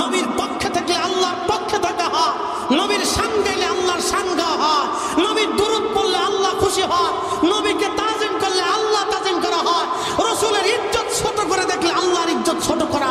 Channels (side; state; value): both; identical; correlation 1.00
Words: নবীর পক্ষে থাকলে আল্লাহর পক্ষে থাকা হয়, নবীর শান গাইলে আল্লাহর শান গাওয়া হয়, নবীর দুরূদ পড়লে আল্লাহ খুশি হয়, নবীকে তাজিম করলে আল্লাহ তাজিম করা হয়, রসুলের ইজ্জত ছোট করে দেখলে আল্লাহর ইজ্জত ছোট করা